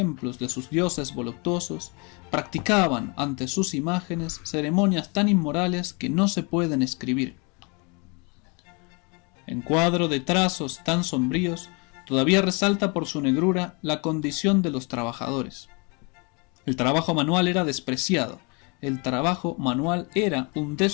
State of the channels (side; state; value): right; quieter; 31.8 dB